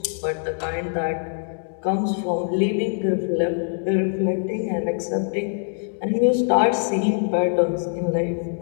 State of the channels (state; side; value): silent; right; digital silence